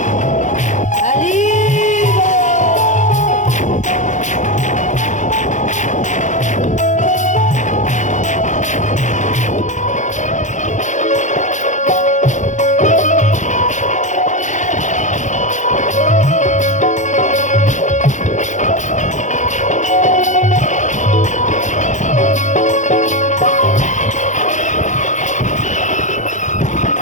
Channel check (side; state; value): right; late; 0.35 ms